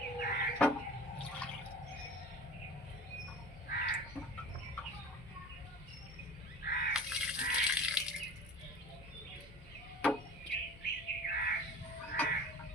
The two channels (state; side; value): normal; both; correlation 0.39